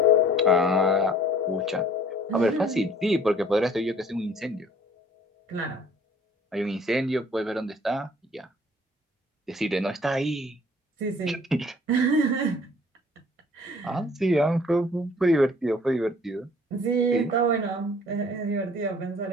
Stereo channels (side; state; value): both; normal; correlation 0.53